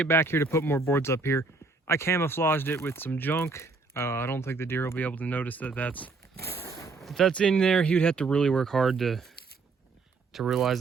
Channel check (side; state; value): left; quieter; 4.1 dB